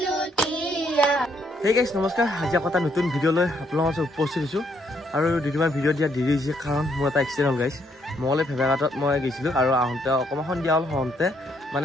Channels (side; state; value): both; normal; correlation 0.72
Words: Hey guys, নমস্কাৰ আজি এটা নতুন ভিডিও লৈ আপোনালোকৰ মাজত উপস্থিত হৈছো আৰু দুদিনমান ভিডিও দিয়া দেৰি হৈছে কাৰণ মোৰ এটা এক্সিডেন্ট হ'ল গাইছ মলে ফেভাগাটত মই গৈছিলো আৰু আহোঁতে অকমান দিয়া হ'ল হওঁতে